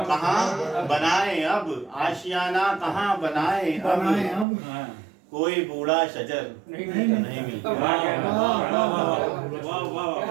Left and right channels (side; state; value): left; drops out; at 4.5 s